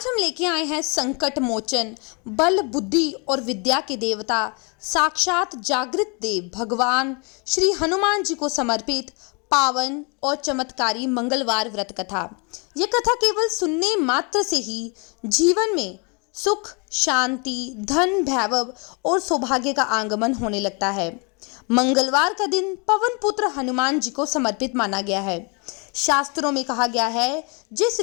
हम लेके आए हैं संकट मोचन, बल बुद्धि और विद्या के देवता, साक्षात जागृत देव भगवान श्री हनुमान जी को समर्पित पावन और चमत्कारी मंगलवार व्रत कथा। यह कथा केवल सुनने मात्र से ही जीवन में सुख, शांति, धन, वैभव और सौभाग्य का आगमन होने लगता है। मंगलवार का दिन पवन पुत्र हनुमान जी को समर्पित माना गया है। शास्त्रों में कहा गया है, जिस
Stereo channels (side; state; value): right; quieter; 33.3 dB